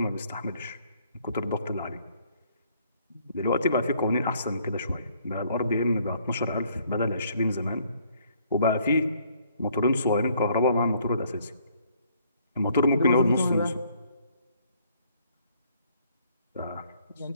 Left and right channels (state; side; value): inverted; both; correlation -0.65